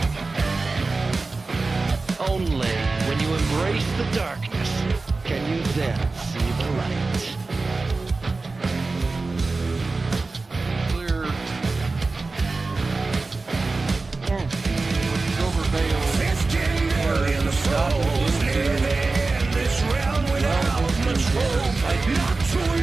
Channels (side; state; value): left; quieter; 3.7 dB